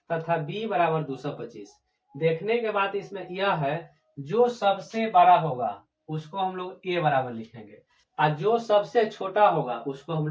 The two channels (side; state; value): both; identical; correlation 1.00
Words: तथा b बराबर 225। देखने के बाद इसमें यह है, जो सबसे बड़ा होगा उसको हम लोग a बराबर लिखेंगे और जो सबसे छोटा होगा उसको हम